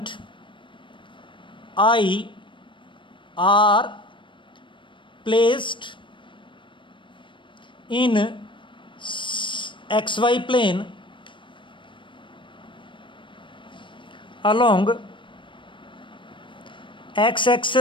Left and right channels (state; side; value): late; right; 0.24 ms